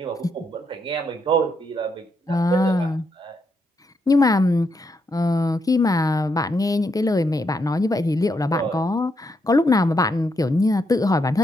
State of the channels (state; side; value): normal; both; correlation 0.79